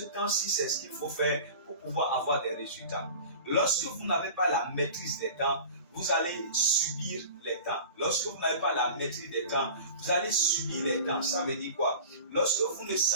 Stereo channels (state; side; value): inverted; both; correlation -0.39